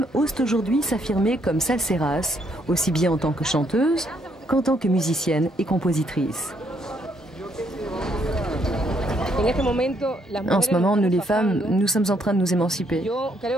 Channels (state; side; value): normal; both; correlation 0.72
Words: osent aujourd'hui s'affirmer comme salseras, aussi bien en tant que chanteuses qu'en tant que musiciennes et compositrices. En ce moment, nous les femmes, nous sommes en train de nous émanciper.